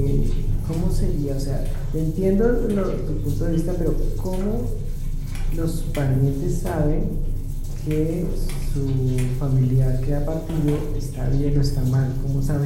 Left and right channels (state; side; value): identical; both; correlation 1.00